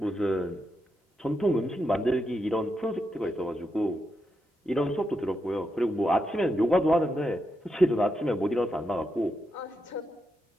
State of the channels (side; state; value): both; normal; correlation 0.84